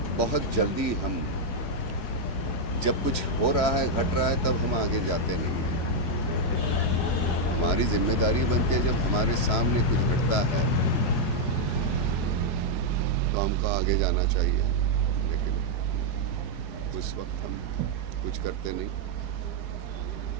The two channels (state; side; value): late; right; 4.7 ms